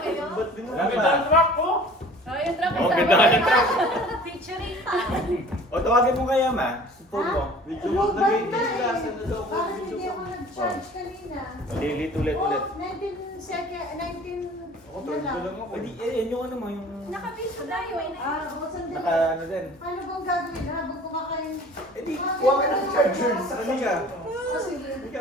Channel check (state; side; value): normal; both; correlation 0.47